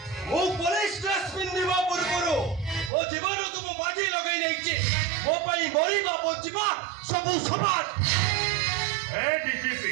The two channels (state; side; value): drops out; left; at 2.9 s